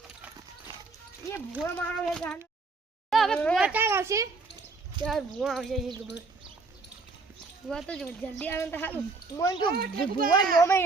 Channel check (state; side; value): quieter; left; 4.0 dB